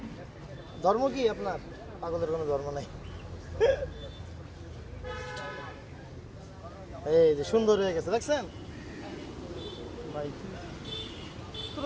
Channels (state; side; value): identical; both; correlation 1.00